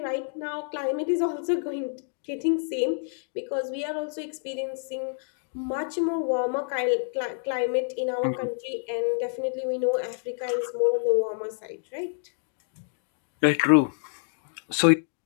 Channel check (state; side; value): silent; right; digital silence